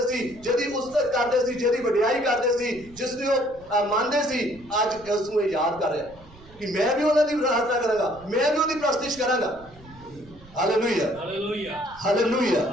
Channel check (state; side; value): noise; right; rumble, 23 dB below the sound